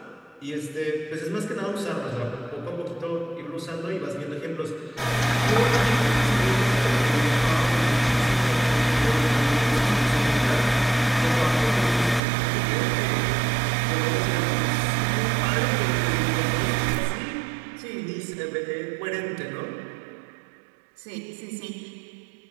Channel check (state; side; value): drops out; left; at 12.2 s